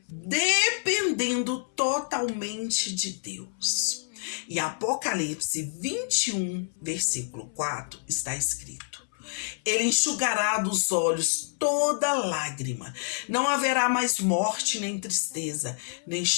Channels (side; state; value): right; silent; 59 dB below the other